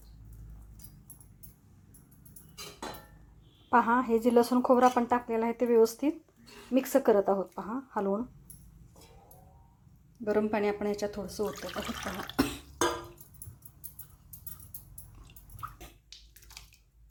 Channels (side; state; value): both; identical; correlation 1.00